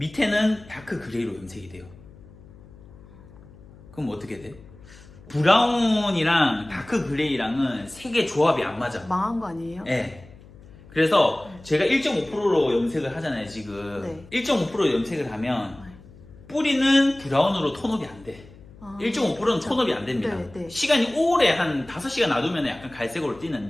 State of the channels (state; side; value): noise; left; hum, 21 dB below the sound